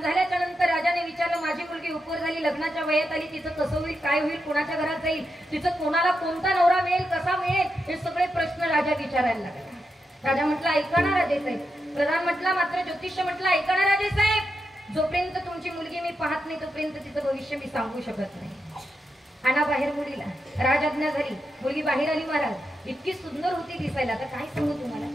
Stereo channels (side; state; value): both; normal; correlation 0.86